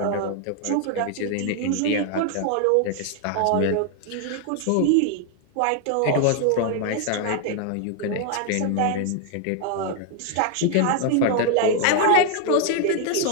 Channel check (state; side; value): different; both; correlation 0.00